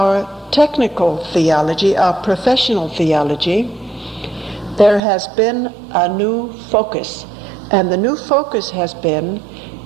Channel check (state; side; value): drops out; left; at 5.0 s